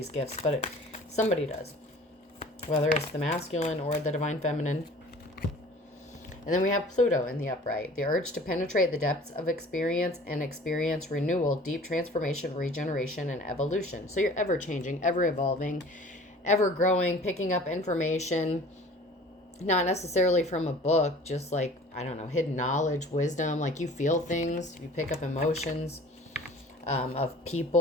gifts, but somebody does. Whether it's the masculine or the divine feminine. And then we have Pluto in the upright. The urge to penetrate the depths of experience and experience renewal, deep transformation, regeneration, and evolution. So you're ever changing, ever evolving, ever growing, picking up information, not necessarily from a book, just like, I don't know, hidden knowledge, wisdom. Like you feel things, you pick up emotions of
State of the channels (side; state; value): both; normal; correlation 0.46